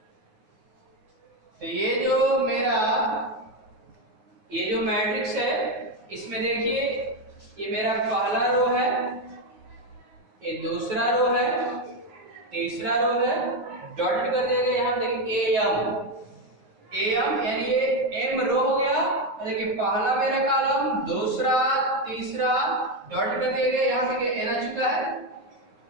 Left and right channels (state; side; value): late; left; 9.4 ms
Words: तो ये जो मेरा ये जो मैट्रिक्स है, इसमें देखिए ये मेरा पहला रो है, ये दूसरा रो है, तीसरा रो है, डॉट कर देंगे। यहाँ देखिए am यानी ये m रो हो गया पहला मेरा कॉलम, दूसरा, तीसरा डॉट कर दिया गया, यहाँ पे n आ चुका है।